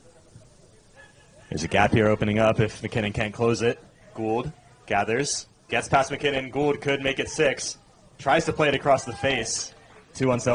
There's a gap here opening up if McKinnon can't close it. Gould gathers, gets past McKinnon. Gould could make it 6. Tries to play it across the face. Too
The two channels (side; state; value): both; identical; correlation 1.00